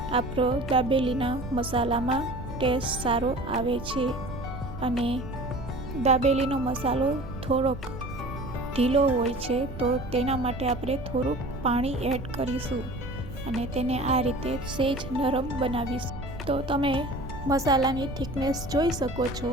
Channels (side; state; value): right; noise; rumble, 11 dB below the sound